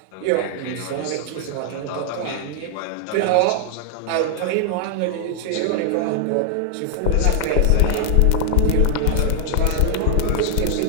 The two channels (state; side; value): different; both; correlation 0.00